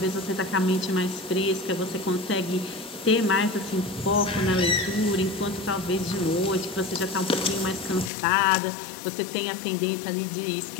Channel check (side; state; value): right; drops out; at 8.1 s